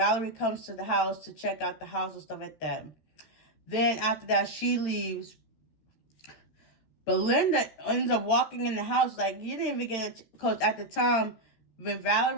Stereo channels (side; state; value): right; late; 13 ms